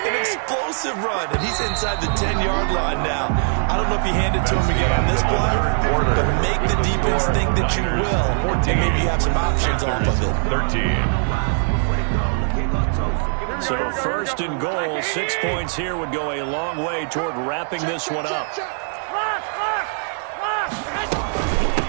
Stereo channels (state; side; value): silent; left; 58 dB below the other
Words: an explosive run, and he's inside the 10-yard line now. I don't know if you hand it to him again on this play, but make the defense think that you will, and maybe you have some options off of it. 13. So 1st and goal, 6 points here would go a long way toward wrapping this one up.